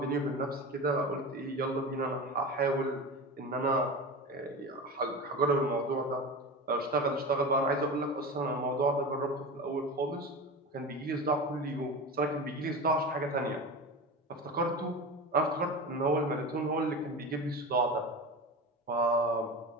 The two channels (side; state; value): both; normal; correlation 0.27